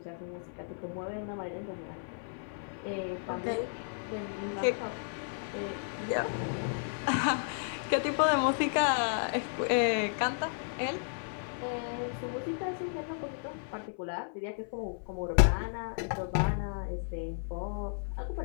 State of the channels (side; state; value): right; silent; 55 dB below the other